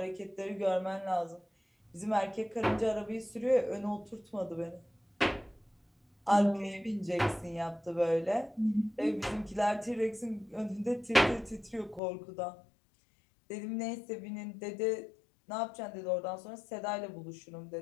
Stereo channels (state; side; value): drops out; right; at 12.0 s